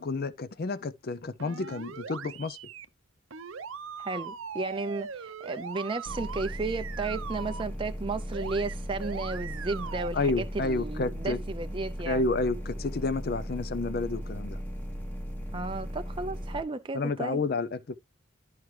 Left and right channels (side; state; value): both; normal; correlation 0.37